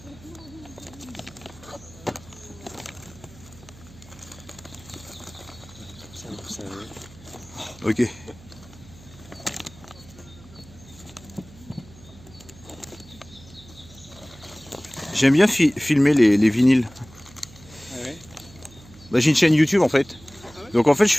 Ok. J'aime bien filmer les vinyles. Ah ouais. Bah, j'ai une chaîne YouTube en fait. Donc en fait je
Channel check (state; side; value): noise; right; hum, 22 dB below the sound